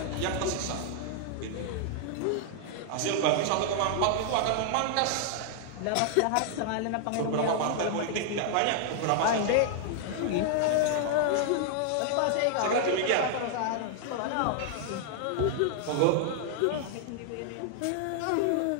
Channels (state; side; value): different; both; correlation 0.00